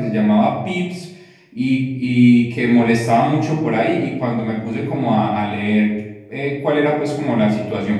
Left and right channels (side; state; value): both; identical; correlation 1.00